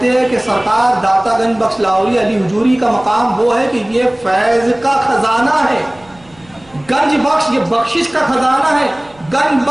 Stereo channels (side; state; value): right; noise; rumble, 28 dB below the sound